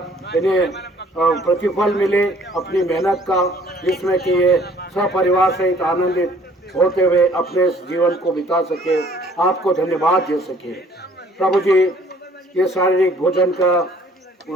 इन्हें प्रतिफल मिले अपनी मेहनत का, जिसमें कि ये सपरिवार सहित आनंदित होते हुए अपने जीवन को बिता सके, आपको धन्यवाद दे सके। प्रभु जी ये शारीरिक भोजन का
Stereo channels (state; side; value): normal; both; correlation 0.57